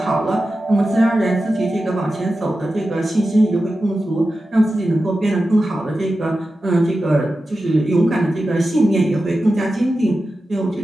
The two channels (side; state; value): both; normal; correlation 0.92